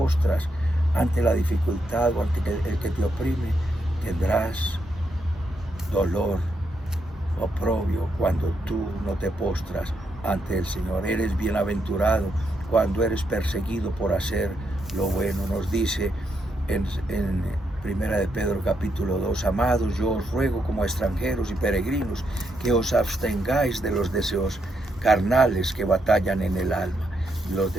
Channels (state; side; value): normal; both; correlation 0.80